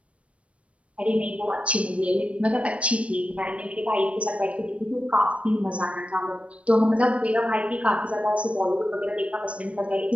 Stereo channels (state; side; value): late; left; 0.062 ms